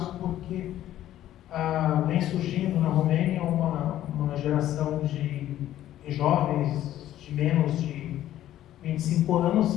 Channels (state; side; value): quieter; right; 12.8 dB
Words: porque vem surgindo na Romênia uma geração de jovens de menos de 25